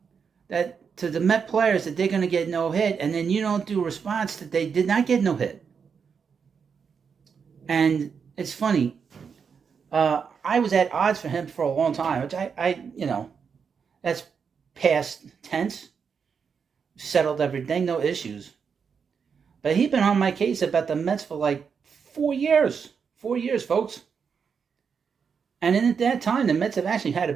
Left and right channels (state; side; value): quieter; left; 6.3 dB